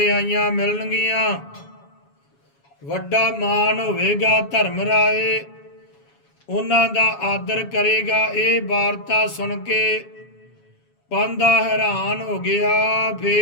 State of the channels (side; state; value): right; late; 7.2 ms